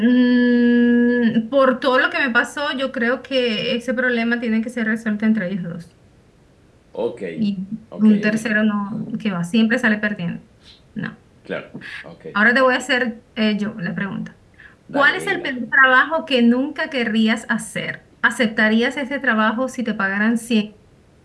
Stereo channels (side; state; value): both; identical; correlation 1.00